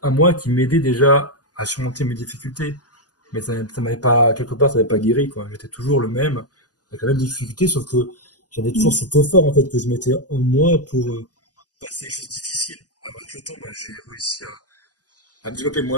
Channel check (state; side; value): late; right; 0.68 ms